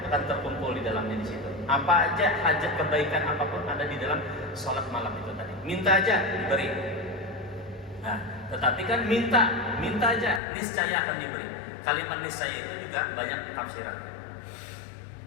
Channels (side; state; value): right; drops out; at 10.4 s